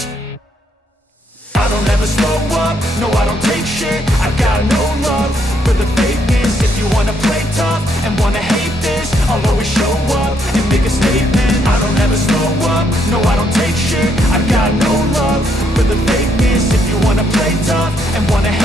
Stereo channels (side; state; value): both; normal; correlation 0.73